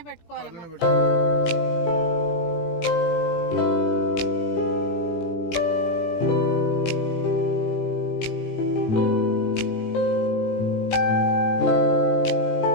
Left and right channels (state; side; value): late; right; 17 ms